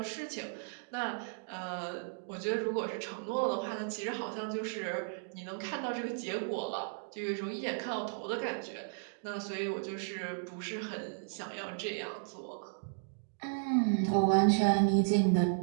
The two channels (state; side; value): silent; left; digital silence